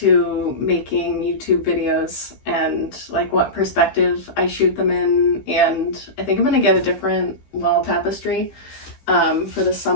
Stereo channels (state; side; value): late; right; 15 ms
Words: making YouTube videos and like what perspective I shoot them in, and I think I'm gonna get a different wall tapestry for the